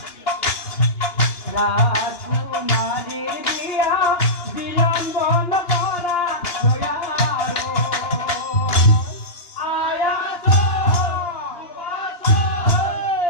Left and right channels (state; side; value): late; right; 2.8 ms